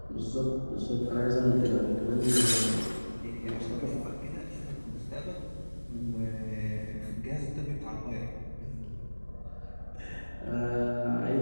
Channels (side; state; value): both; inverted; correlation -1.00